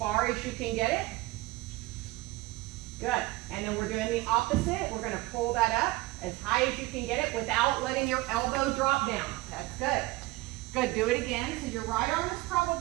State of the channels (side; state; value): left; quieter; 20.4 dB